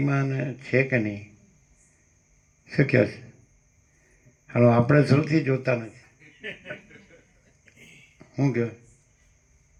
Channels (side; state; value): both; identical; correlation 1.00